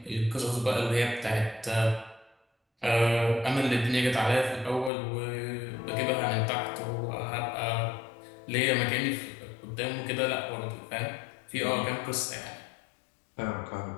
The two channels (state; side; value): drops out; right; at 4.9 s